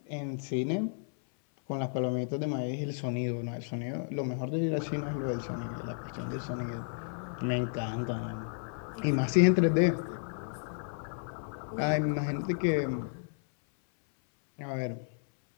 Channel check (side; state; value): right; silent; 56 dB below the other